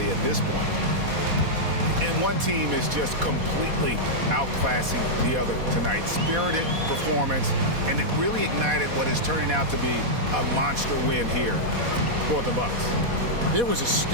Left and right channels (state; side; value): late; left; 4.1 ms